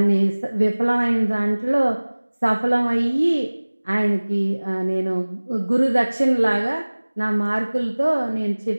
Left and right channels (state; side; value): inverted; both; correlation -1.00